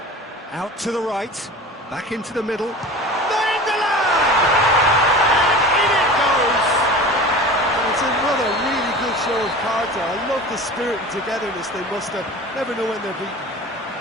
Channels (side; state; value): both; normal; correlation 0.36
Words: out to the right, back into the middle. Nainggolan! And in it goes! And it's another really good show of character. I love the spirit and togetherness they muster. Never know when they're beaten.